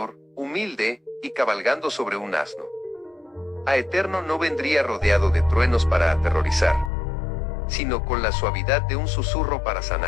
humilde, y cabalgando sobre un asno. A Eterno no vendría rodeado de truenos para aterrorizar, sino con la suavidad de un susurro para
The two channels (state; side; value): drops out; right; at 6.9 s